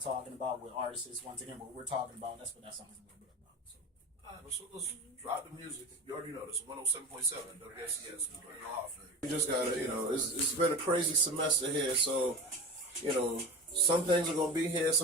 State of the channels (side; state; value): both; normal; correlation 0.29